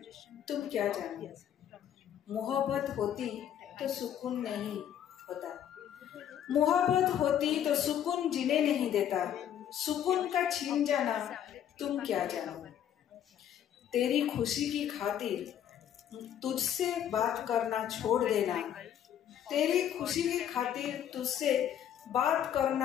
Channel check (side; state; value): right; quieter; 10.1 dB